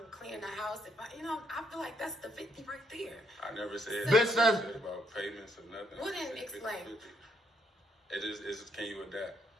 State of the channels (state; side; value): normal; both; correlation 0.72